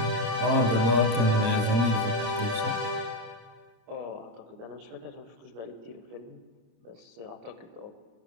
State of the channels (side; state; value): left; late; 26 ms